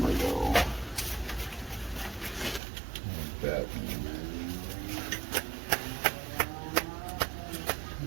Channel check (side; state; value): left; drops out; at 2.6 s